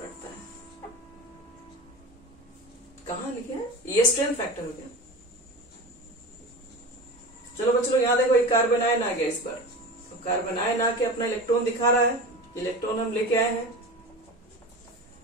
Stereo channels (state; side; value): normal; both; correlation 0.30